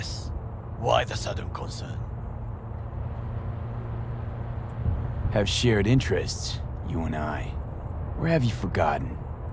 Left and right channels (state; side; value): identical; both; correlation 1.00